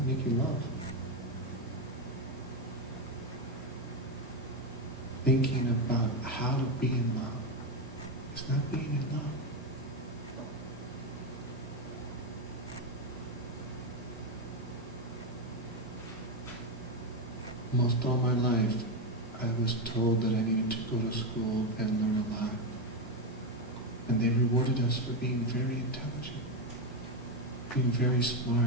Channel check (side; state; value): both; normal; correlation 0.09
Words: making love. Thinking about how to be in love is not being in love. Most all my life, I was told that I needed to go to school and learn a lot. And they rewarded us for being very intelligent, being very